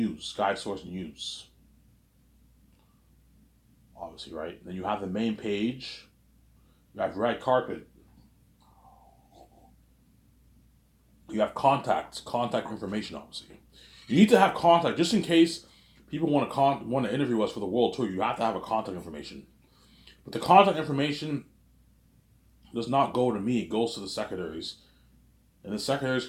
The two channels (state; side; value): identical; both; correlation 1.00